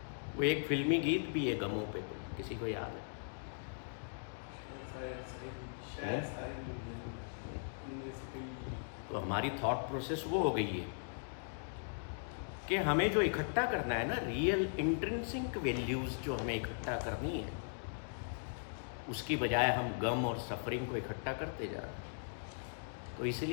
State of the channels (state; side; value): silent; right; digital silence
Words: वो एक फिल्मी गीत भी है गमों पे, कोई किसी को याद है? तो हमारी थॉट प्रोसेस वो हो गई है कि हमें जो इकट्ठा करना है ना, रियल इंट्रिंसिक वैल्यूज जो हमें इकट्ठा करनी है, उसकी बजाय हम गम और सफरिंग को इकट्ठा करते जा रहे हैं। तो